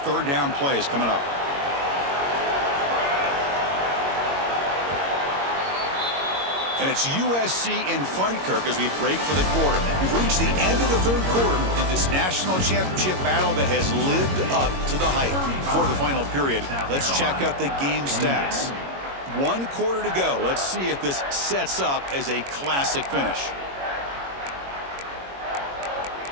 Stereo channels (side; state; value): left; late; 21 ms